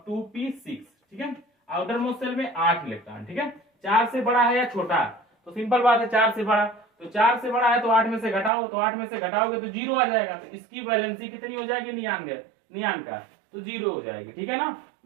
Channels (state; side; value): drops out; left; at 8.5 s